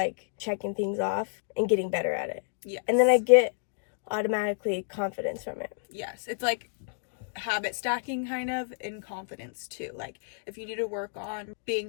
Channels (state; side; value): silent; right; digital silence